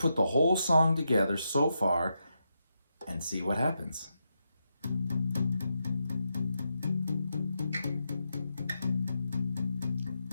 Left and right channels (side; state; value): both; inverted; correlation -0.84